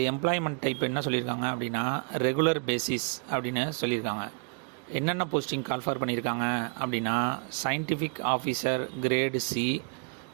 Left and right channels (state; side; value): quieter; left; 38.8 dB